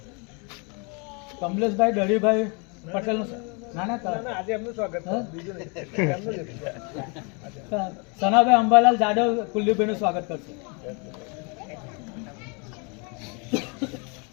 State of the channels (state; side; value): quieter; right; 33.3 dB